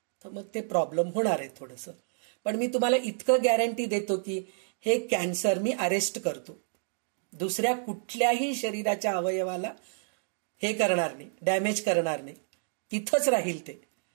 तर मग ते प्रॉब्लेम होणार आहे थोडंसं. पण मी तुम्हाला इतकं गॅरंटी देतो की हे कॅन्सर मी अरेस्ट करतो, दुसऱ्या कुठल्याही शरीराच्या अवयवाला हे करणार नाही, डॅमेज करणार नाही, तिथंच राहील ते.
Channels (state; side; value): silent; left; digital silence